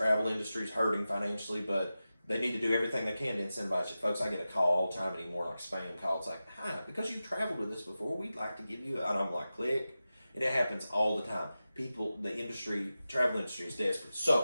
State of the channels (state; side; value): inverted; both; correlation -0.94